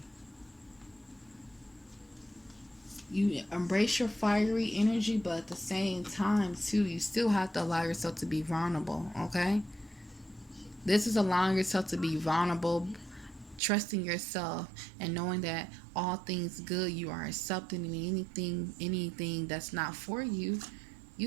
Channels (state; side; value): drops out; left; at 13.6 s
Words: You embrace your fiery energy, but at the same time, too, you still have to allow yourself to be vulnerable, okay? This is allowing yourself to be vulnerable, trusting yourself, and knowing that all things good you are accepting, and anything that's not for you,